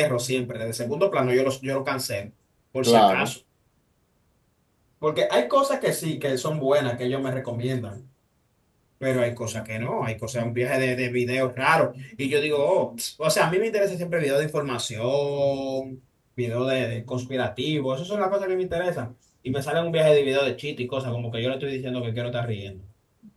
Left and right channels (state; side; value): identical; both; correlation 1.00